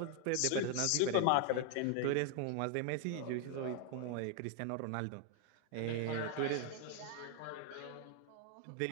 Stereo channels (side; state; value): both; different; correlation 0.00